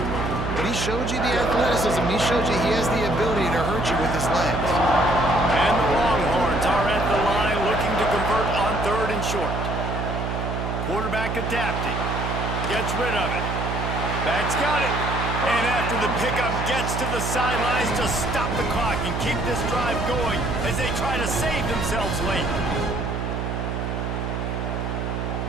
but he showed you the athleticism. He showed you he has the ability to hurt you with his legs. And the Longhorns are at the line looking to convert on 3rd and short. Quarterback adapting. Gets rid of it. Back's got it. And after the pickup, gets to the sidelines to stop the clock and keep this drive going as they try to save themselves late.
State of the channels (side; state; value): right; noise; hum, 3 dB below the sound